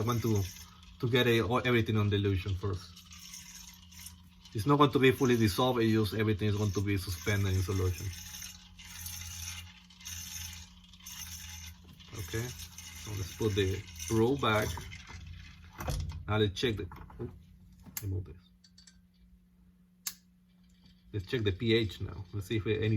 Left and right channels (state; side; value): identical; both; correlation 1.00